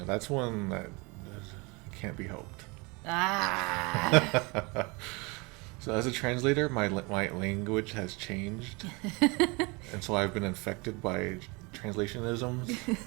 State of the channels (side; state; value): left; quieter; 27.7 dB